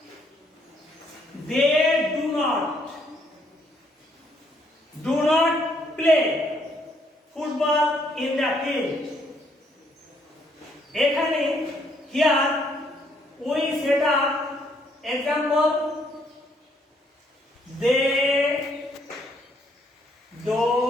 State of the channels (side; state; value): both; normal; correlation 0.69